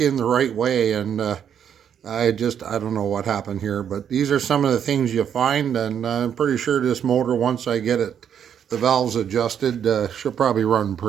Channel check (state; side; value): quieter; left; 8.6 dB